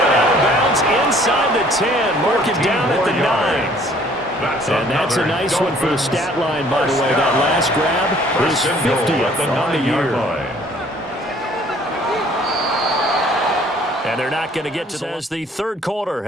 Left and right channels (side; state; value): both; normal; correlation 0.57